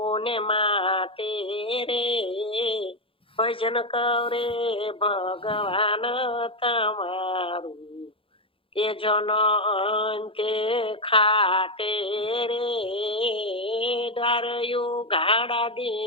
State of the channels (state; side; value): late; right; 0.26 ms